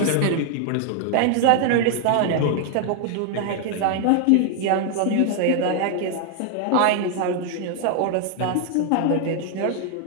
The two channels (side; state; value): both; different; correlation 0.00